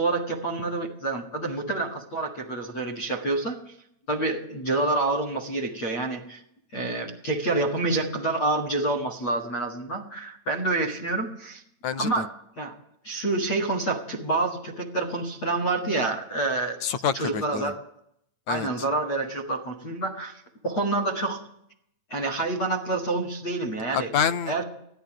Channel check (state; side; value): late; right; 9.0 ms